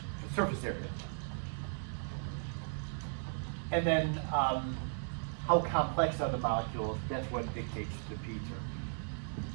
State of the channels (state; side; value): silent; left; digital silence